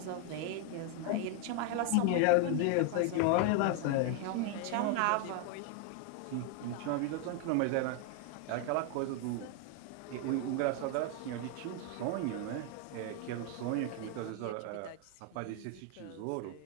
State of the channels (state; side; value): different; both; correlation 0.01